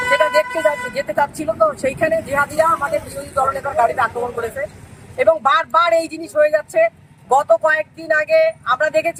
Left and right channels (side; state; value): both; identical; correlation 1.00